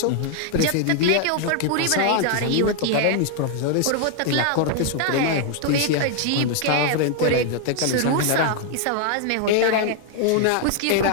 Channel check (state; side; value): different; both; correlation 0.00